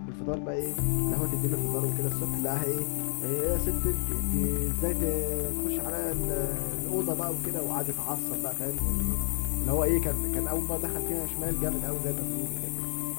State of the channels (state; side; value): silent; right; digital silence